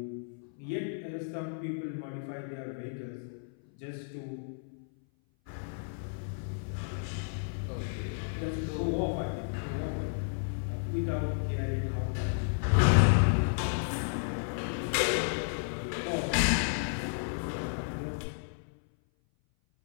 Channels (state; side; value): silent; right; 56 dB below the other